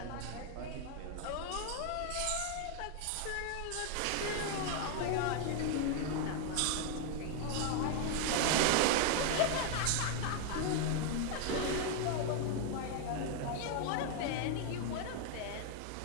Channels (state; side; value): different; both; correlation 0.00